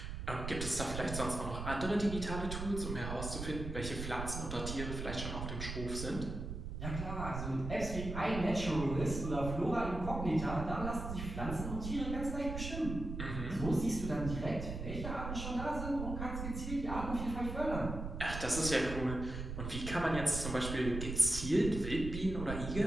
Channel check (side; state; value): right; noise; rumble, 5 dB below the sound